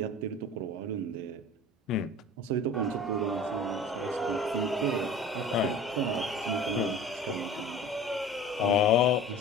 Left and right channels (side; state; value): both; normal; correlation 0.40